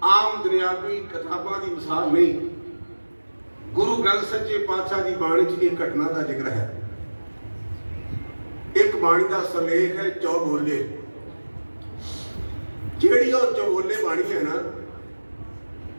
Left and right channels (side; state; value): both; inverted; correlation -1.00